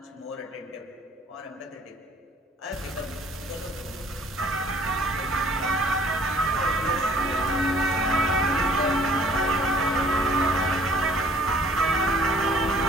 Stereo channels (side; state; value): both; normal; correlation 0.56